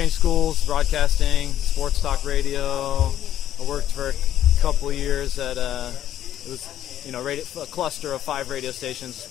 schools, broadcasting, sports talk radio. I worked for a couple of years at it was a cluster of 5 radio stations:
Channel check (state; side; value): quieter; right; 11.6 dB